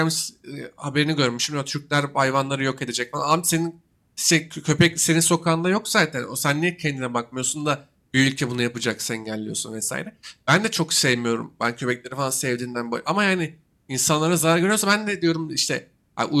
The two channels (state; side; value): identical; both; correlation 1.00